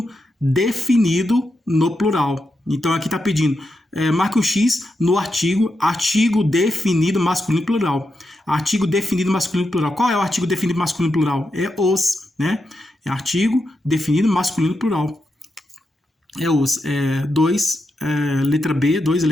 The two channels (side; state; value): both; normal; correlation 0.86